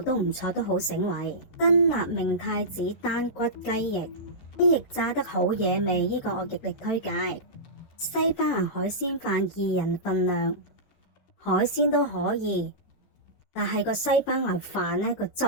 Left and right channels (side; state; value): right; late; 13 ms